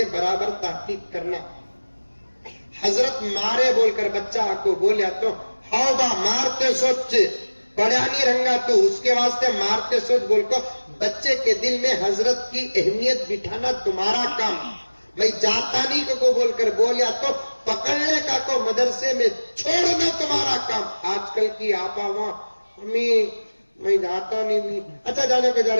برابر تحقیق کرنا. حضرت مارے بول کر بچہ کو بولیا تو ہاؤ با مارتے سوچ پڑھا نہیں رنگا تو اس کے واسطے مارتے سوچ بول کو بچے کے دل میں حضرت کی اہمیت بٹھانا تمہارا کام. میں جاتا نہیں کو بول کر بولیا تو پکڑنے کا کو مدرسے میں چھوڑنا تمہارا کام. آج کل کی آپا وہاں امی میں جاتا نہیں. اچھا جانے کو جا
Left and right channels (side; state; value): both; inverted; correlation -1.00